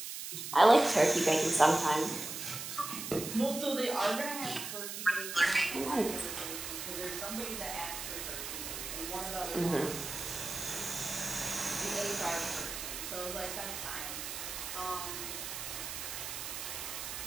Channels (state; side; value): noise; right; hiss, 6 dB below the sound